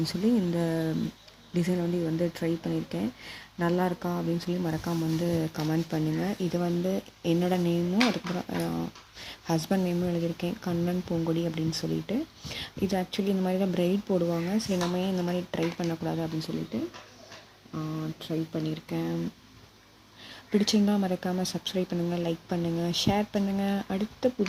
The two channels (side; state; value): both; identical; correlation 1.00